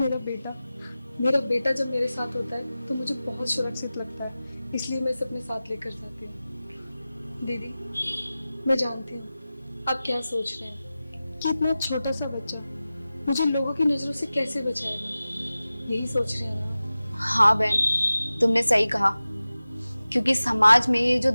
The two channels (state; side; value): inverted; both; correlation -0.96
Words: बेटा जब मेरे साथ होता है तो मुझे बहुत सुरक्षित लगता है, इसलिए मैं इसे अपने साथ लेकर जाती हूँ। दीदी मैं जानती हूँ आप क्या सोच रहे हैं कि इतना छोटा सा बच्चा मुझे लोगों की नजरों से कैसे बचाएगा, यही सोच रहे हैं ना? हाँ बहन, तुमने सही कहा, क्योंकि समाज में ये जो